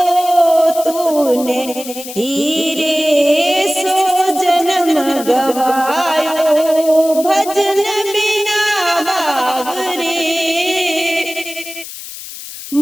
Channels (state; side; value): noise; left; hiss, 12 dB below the sound